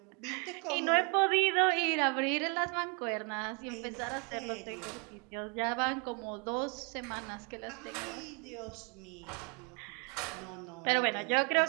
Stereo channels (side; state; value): left; quieter; 34.0 dB